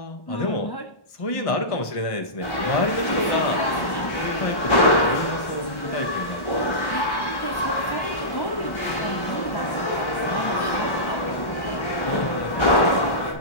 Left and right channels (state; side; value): late; right; 1.1 ms